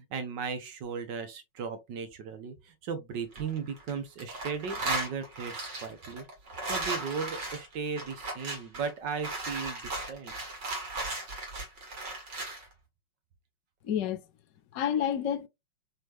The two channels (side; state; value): left; late; 5.4 ms